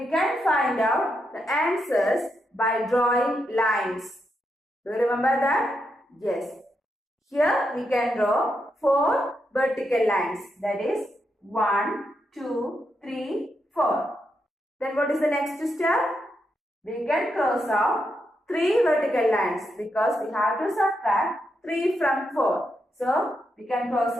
can find out the answers by drawing lines. Do you remember that? Yes. Here we can draw 4 vertical lines. That is 1, 2, 3, 4. Then what is the next step? We can cross out 3 vertical lines because we have to subtract 3 from 4. So we can cross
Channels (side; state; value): both; normal; correlation 0.83